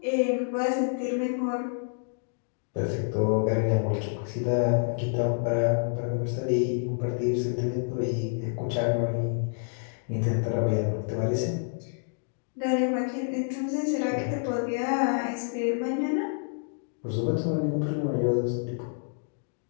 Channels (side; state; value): right; silent; digital silence